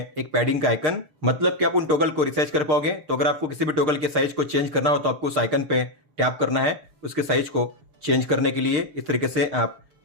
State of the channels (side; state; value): left; late; 6.6 ms